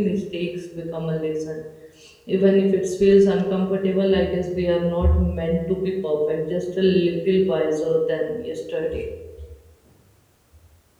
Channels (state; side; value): identical; both; correlation 1.00